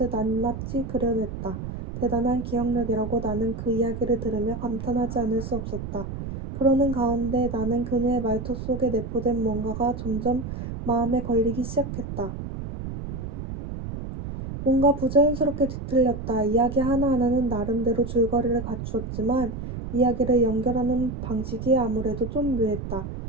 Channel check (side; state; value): right; noise; rumble, 7 dB below the sound